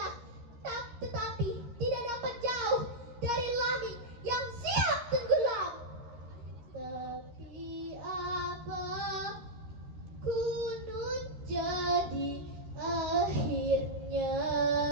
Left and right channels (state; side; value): late; left; 13 ms